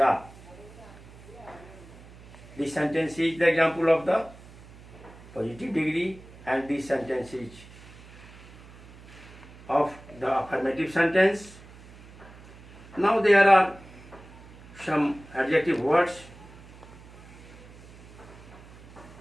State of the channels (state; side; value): noise; right; hum, 20 dB below the sound